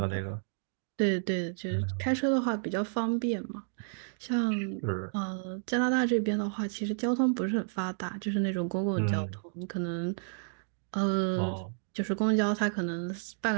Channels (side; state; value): left; silent; digital silence